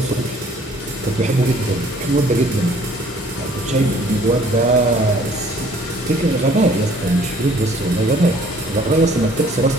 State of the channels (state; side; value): normal; both; correlation 0.57